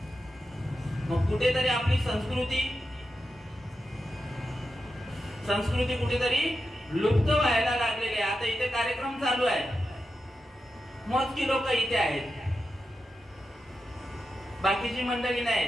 मग कुठेतरी आपली संस्कृती कुठेतरी लुप्त व्हायला लागलेली आहे. आता इथे कार्यक्रम चालू आहे, मोजकी लोक इथे आहेत, बाकीची मंडळी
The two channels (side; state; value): both; normal; correlation 0.90